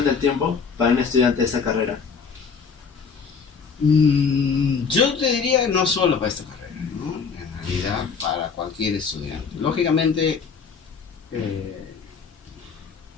tiempo para un estudiante de esa carrera. Yo te diría que no solo para esta carrera, ¿no? En realidad para cualquier estudiante. Lógicamente,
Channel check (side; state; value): right; quieter; 5.7 dB